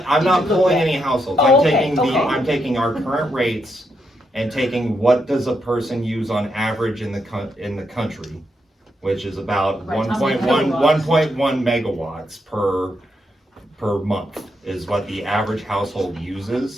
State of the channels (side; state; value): both; normal; correlation 0.81